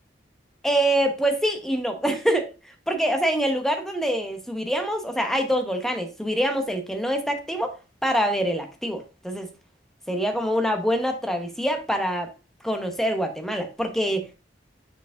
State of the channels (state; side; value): normal; both; correlation 0.74